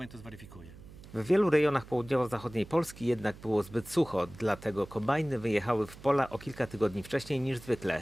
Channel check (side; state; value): right; noise; hum, 18 dB below the sound